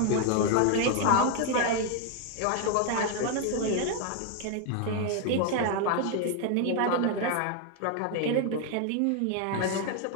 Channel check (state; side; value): different; both; correlation 0.01